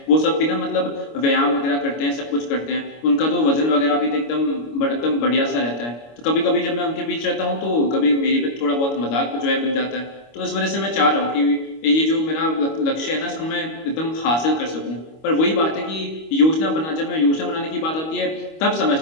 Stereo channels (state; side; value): late; right; 25 ms